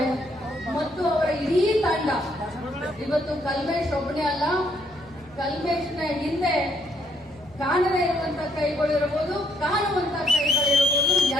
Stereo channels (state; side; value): noise; right; hum, 27 dB below the sound